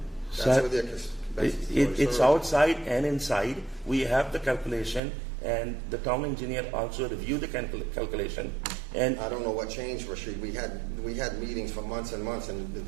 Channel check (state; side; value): drops out; left; at 5.0 s